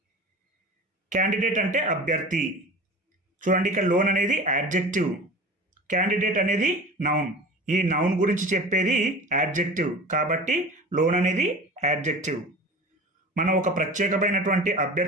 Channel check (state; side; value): normal; both; correlation 0.36